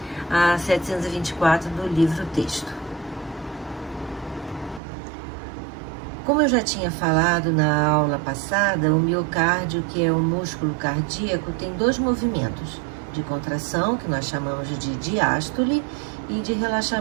a 724 do livro-texto. Como eu já tinha falado na aula passada, o miocárdio, que é o músculo cardíaco, tem dois movimentos, de contração, que nós chamamos de diástole, e de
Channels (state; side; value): drops out; left; at 4.8 s